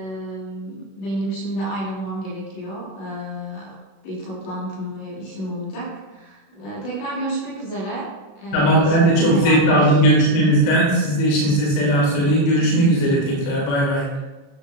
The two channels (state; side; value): late; right; 36 ms